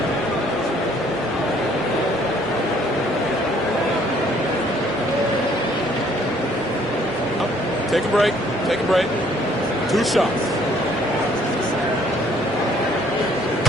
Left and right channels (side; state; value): both; normal; correlation 0.62